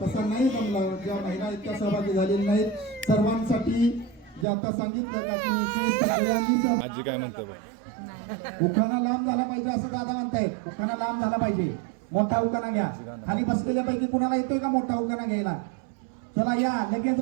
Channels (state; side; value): drops out; left; at 4.5 s